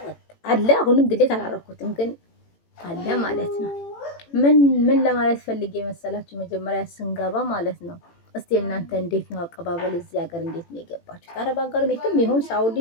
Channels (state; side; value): late; right; 18 ms